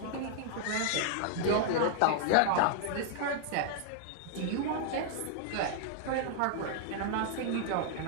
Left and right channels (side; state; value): both; different; correlation 0.00